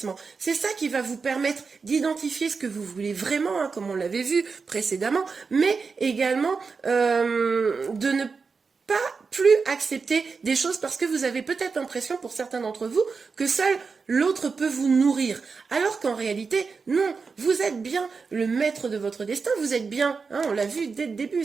C'est ça qui va vous permettre d'identifier ce que vous voulez vraiment, hein, comme on l'avait vu précédemment, mais également de ne pas plus accepter des choses parce que vous avez peut-être l'impression, pour certains d'entre vous, que seul l'autre peut vous nourrir. Alors qu'en réalité, non, vous êtes bien le maître de votre destin, vous êtes bien, hein, on l'a vu dès le début,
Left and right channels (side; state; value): left; quieter; 4.9 dB